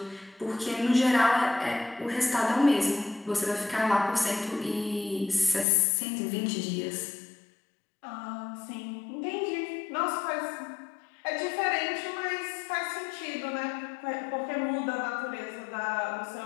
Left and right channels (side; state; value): right; drops out; at 5.7 s